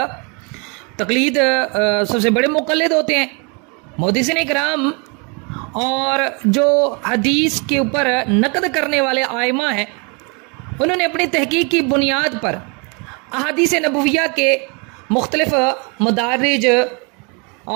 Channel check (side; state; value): left; quieter; 32.9 dB